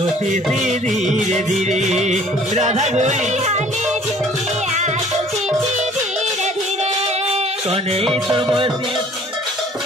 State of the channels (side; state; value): both; normal; correlation 0.54